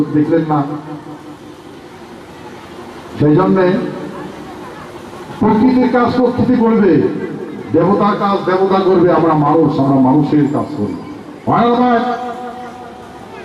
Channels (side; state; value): both; identical; correlation 1.00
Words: দেখলেন না? সেই জন্যে প্রকৃতির কাজ প্রকৃতি করবে, দেবতার কাজ দেবতা করবে, আমরা মানুষের কাজ করি।